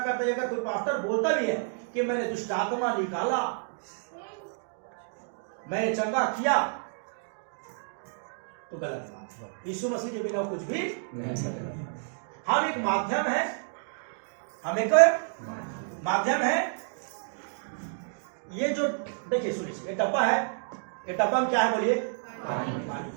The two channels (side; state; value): left; silent; digital silence